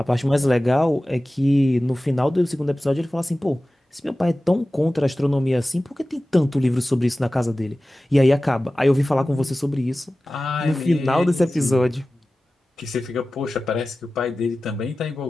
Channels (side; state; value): both; normal; correlation 0.96